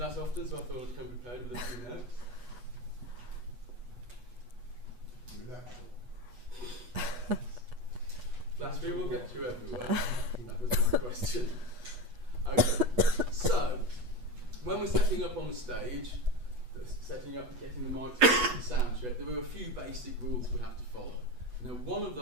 often, so I thought I'd come prepared with a few notes. Flattery will get you everywhere. That was my question. Okay, so when we're setting up on the stage, setting up, getting the microphone, sound check, there were a few basic rules we have to follow. Now, one of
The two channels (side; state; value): left; late; 8.2 ms